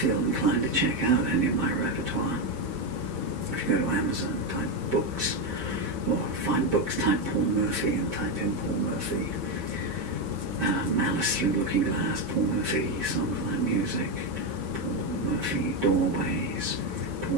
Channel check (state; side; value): late; left; 7.7 ms